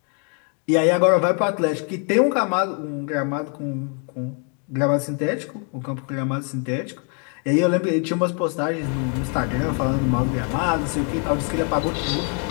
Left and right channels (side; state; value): right; quieter; 39.9 dB